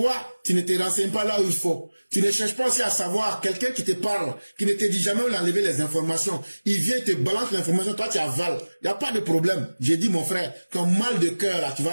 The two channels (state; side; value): inverted; both; correlation -1.00